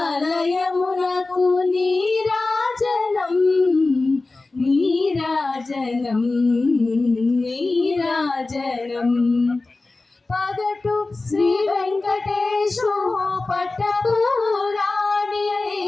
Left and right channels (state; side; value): quieter; right; 3.4 dB